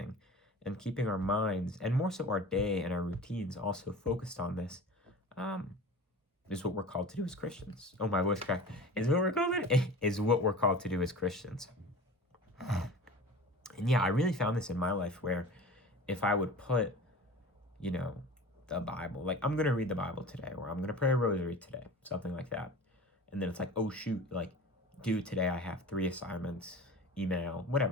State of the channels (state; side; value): normal; both; correlation 0.37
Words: and keeping our minds, and more so our day and our routines, also focused on this, is what we're called to do as Christians. Oh, my voice cracked. Is what we're called to do as Christians. And yeah, I really found this in my life, where if I would put, the Bible, like, I'm going to read the Bible today, or I'm going to pray a rosary today, something like that. And then it's like, oh shoot, like, dude, today I have 3 assignments, email,